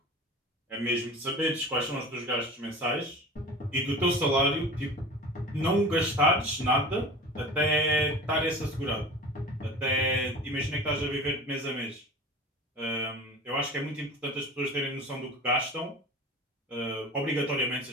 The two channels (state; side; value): normal; both; correlation 0.37